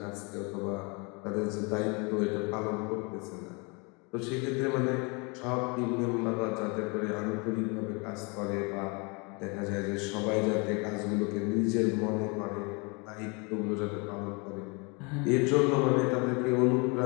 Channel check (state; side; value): quieter; right; 30.8 dB